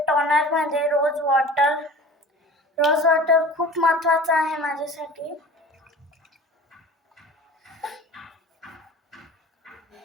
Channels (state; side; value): normal; both; correlation 0.40